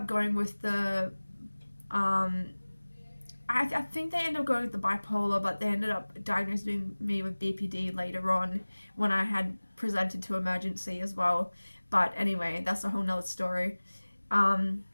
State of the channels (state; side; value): inverted; both; correlation -1.00